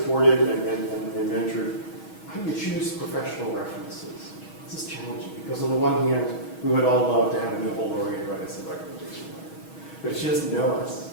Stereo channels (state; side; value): late; right; 6.3 ms